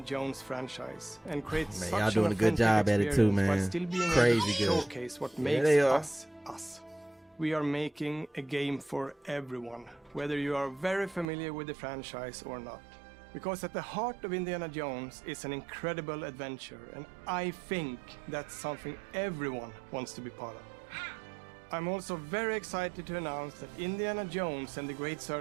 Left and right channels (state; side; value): drops out; left; at 11.2 s